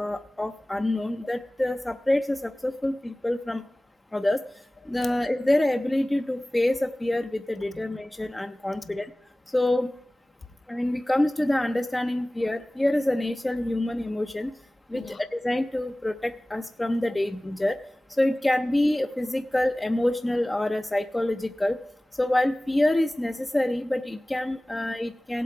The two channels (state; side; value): normal; both; correlation 0.98